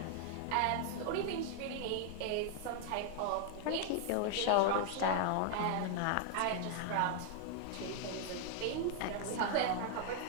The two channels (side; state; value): both; different; correlation 0.00